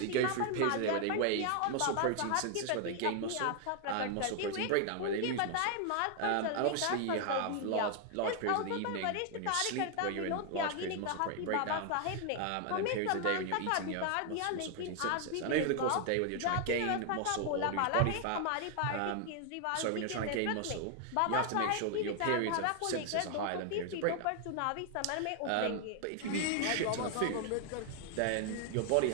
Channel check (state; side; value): different; both; correlation 0.00